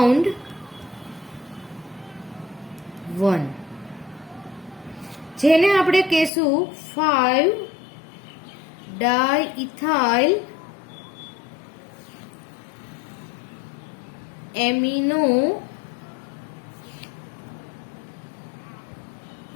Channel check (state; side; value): drops out; right; at 6.3 s